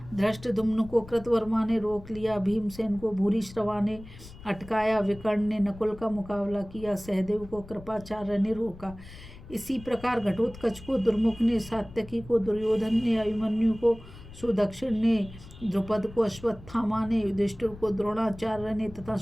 धृष्टद्युम्न को कृतवर्मा ने रोक लिया। भीमसेन को भूरिश्रवा ने अटकाया। विकर्ण ने नकुल का मुकाबला किया। सहदेव को कृपाचार्य ने रोका। इसी प्रकार घटोत्कच को दुर्मुख ने, सात्यकी को दुर्योधन ने, अभिमन्यु को सुदक्षिण ने, द्रुपद को अश्वत्थामा ने, युधिष्ठिर को द्रोणाचार्य ने तथा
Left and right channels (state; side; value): noise; left; rumble, 17 dB below the sound